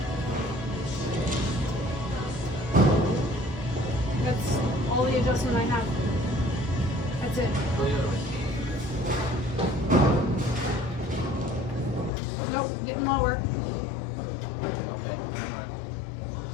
That's all the adjustment I have. That's it. Go the other way. Nope, getting lower. Okay.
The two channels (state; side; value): drops out; right; at 12.1 s